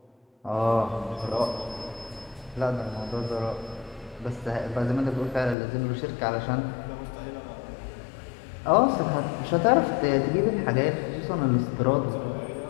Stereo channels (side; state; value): right; drops out; at 5.6 s